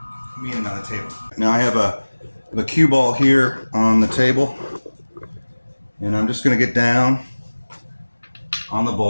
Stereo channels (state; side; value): inverted; both; correlation -1.00